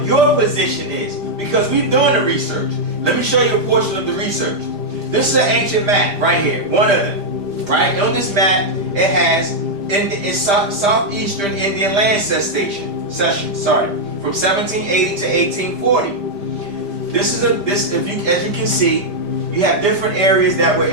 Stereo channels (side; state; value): left; late; 5.0 ms